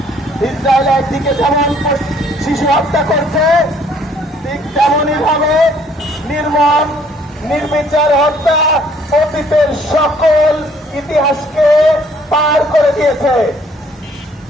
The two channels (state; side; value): normal; both; correlation 0.61